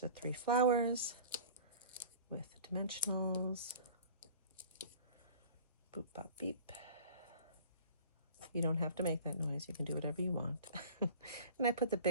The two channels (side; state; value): both; inverted; correlation -0.42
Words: the 3 flowers with the dimensionals. Boop, bop, beep. You don't have to make that noise. You can do whatever you want. And I put the